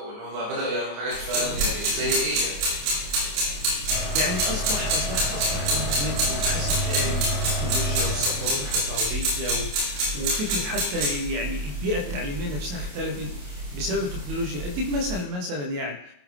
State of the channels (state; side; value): late; left; 28 ms